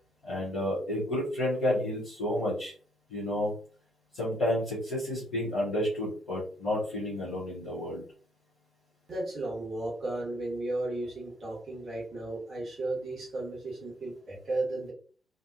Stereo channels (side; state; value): both; normal; correlation 0.65